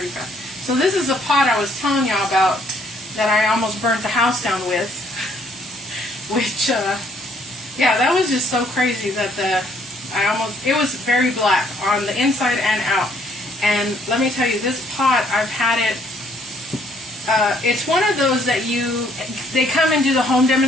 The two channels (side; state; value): both; normal; correlation 0.65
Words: fast. So this is the pot I was telling y'all about that I almost burnt the house down with. Which, yeah, that was just so crazy that it was very black on the inside and out. And let me tell you, this pot, I've had it, it's one of those that they come and do the home